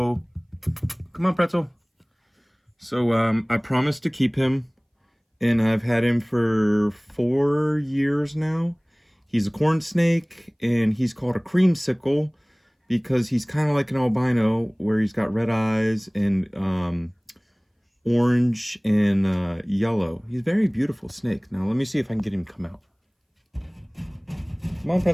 come on, Pretzel. So I promised to keep him, and I've had him for 4 years now. He's a corn snake, and he's called a creamsicle because he's kind of like an albino, where he's got red eyes and orange and yellow. He's a very beautiful snake. Now let me see if I can get him to come out. Come on,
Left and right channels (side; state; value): both; identical; correlation 1.00